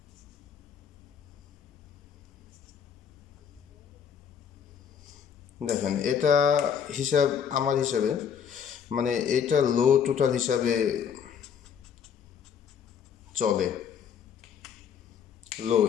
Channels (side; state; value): right; quieter; 7.7 dB